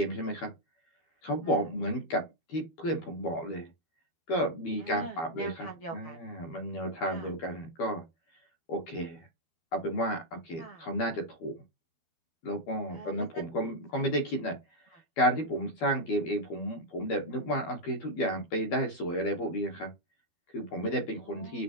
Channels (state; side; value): late; right; 12 ms